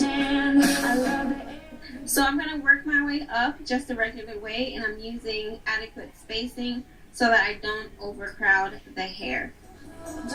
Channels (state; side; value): identical; both; correlation 1.00